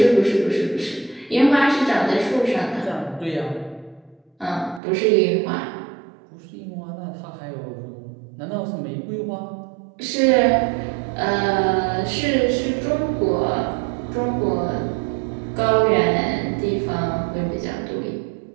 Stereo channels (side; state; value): left; drops out; at 4.8 s